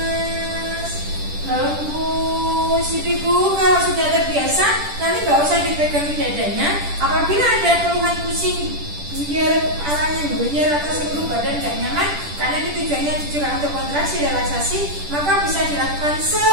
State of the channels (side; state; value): left; late; 10 ms